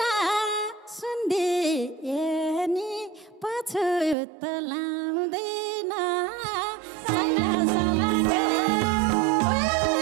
सुन्दिए नि पछुत लाउँदैन साइला सलकै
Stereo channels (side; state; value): left; drops out; at 4.2 s